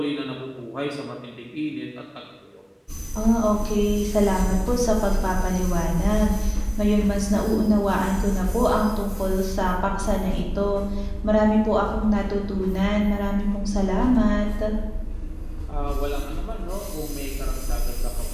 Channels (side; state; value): both; identical; correlation 1.00